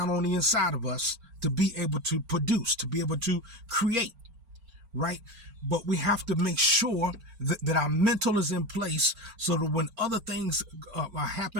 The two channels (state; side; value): late; left; 4.4 ms